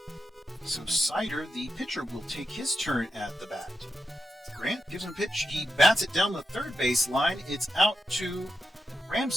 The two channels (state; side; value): normal; both; correlation 0.87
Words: So Sider, the pitcher, will take his turn at the bat. Grant gives him a pitch. He bats it down the third base line. It's out to